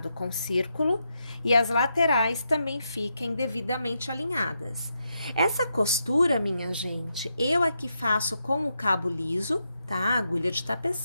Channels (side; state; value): both; inverted; correlation -0.83